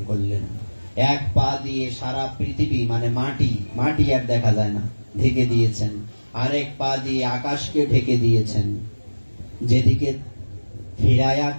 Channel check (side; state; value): both; inverted; correlation -1.00